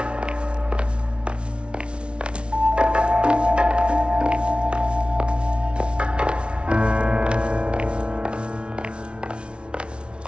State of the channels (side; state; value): left; late; 0.058 ms